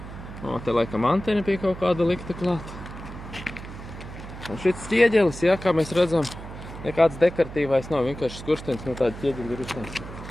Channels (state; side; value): noise; right; hum, 12 dB below the sound